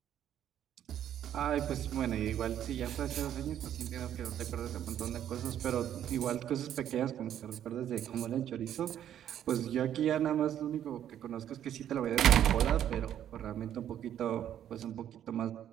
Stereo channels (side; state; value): left; quieter; 10.5 dB